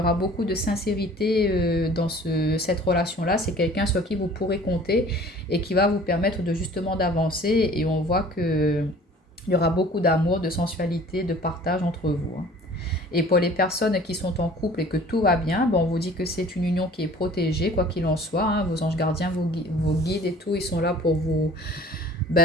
beaucoup de sincérité dans cette relation-là. C'est quelqu'un sur qui vous pourrez compter et qui va vous permettre de justement d'avancer et on voit que il y aura beaucoup d'amour, de sensualité, de partage entre vous, hein. Et pour les personnes qui sont en couple et que tout va bien, on vous dit que c'est une union qui est protégée, quoi qu'il en soit, hein. Vos anges gardiens, vos guides et tout, ils sont là pour vous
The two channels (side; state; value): both; normal; correlation 0.48